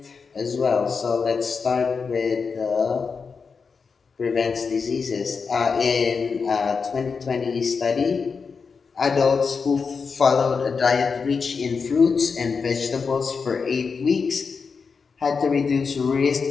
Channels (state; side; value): quieter; right; 5.3 dB